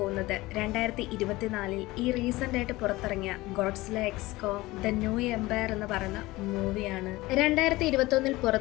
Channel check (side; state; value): right; quieter; 19.7 dB